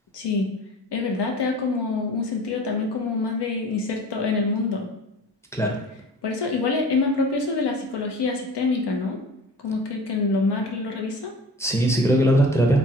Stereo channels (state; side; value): normal; both; correlation 0.41